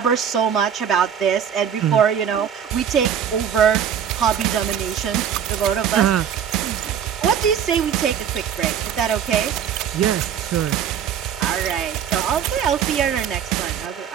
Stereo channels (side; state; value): left; quieter; 8.5 dB